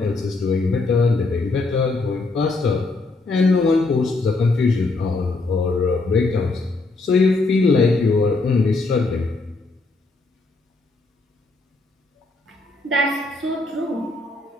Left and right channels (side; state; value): right; quieter; 3.4 dB